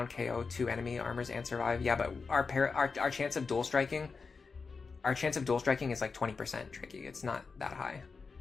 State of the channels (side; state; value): right; quieter; 4.8 dB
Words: KO 2 enemy armors and survive. Yeah, but our chance of dual striking, is like 20% tricky. It's not that high.